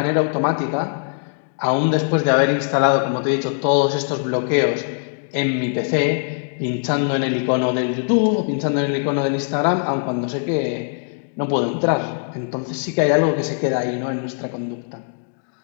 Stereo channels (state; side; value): silent; right; digital silence